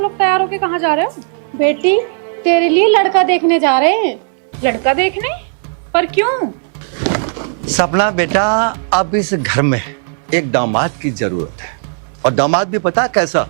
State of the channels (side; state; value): left; silent; digital silence